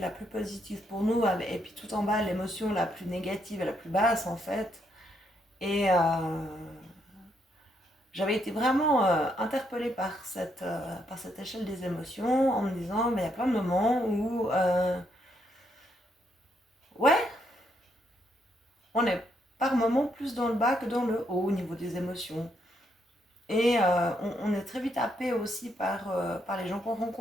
plus positive pour nous, et puis tout en bas, l'émotion la plus négative et la plus basse en fait. Et j'avais été vraiment interpellée par cette échelle des émotions en me disant, il y a plein de moments où, ouais, on est par moments plus dans le bas que dans le haut au niveau des émotions. Et on est très vite happé aussi par les gens qu'on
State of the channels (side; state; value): both; normal; correlation 0.75